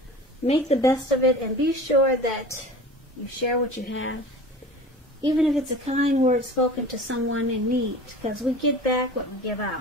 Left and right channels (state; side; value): normal; both; correlation 0.38